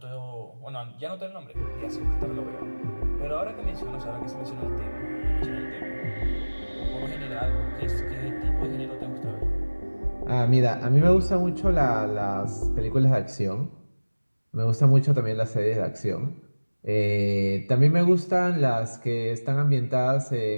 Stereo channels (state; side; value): inverted; both; correlation -1.00